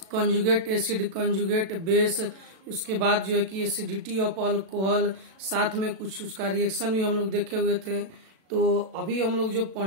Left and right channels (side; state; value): left; late; 37 ms